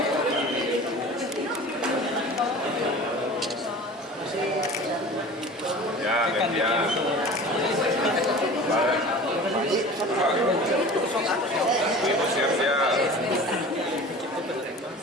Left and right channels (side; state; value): both; normal; correlation 0.39